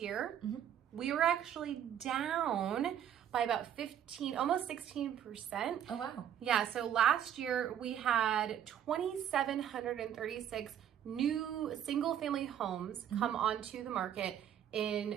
we were actually down by about almost 16%. Oh, wow. Yeah, so last year we had 2,736 new single family homes come onto the market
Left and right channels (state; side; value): quieter; left; 9.9 dB